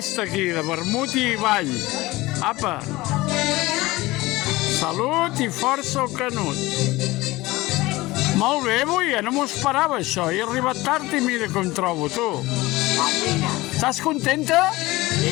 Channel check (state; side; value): quieter; right; 19.7 dB